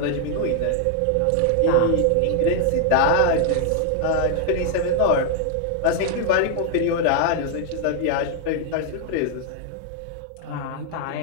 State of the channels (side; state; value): both; different; correlation 0.00